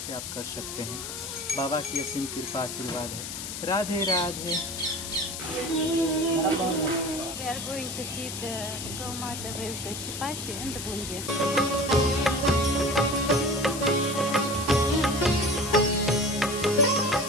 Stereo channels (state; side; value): noise; left; hiss, 7 dB below the sound